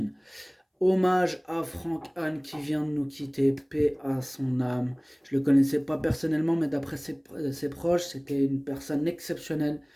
Hommage à Franck Anne qui vient de nous quitter, paix à son âme. Je le connaissais pas personnellement, mais d'après ses proches, c'était une personne exceptionnelle,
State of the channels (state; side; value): identical; both; correlation 1.00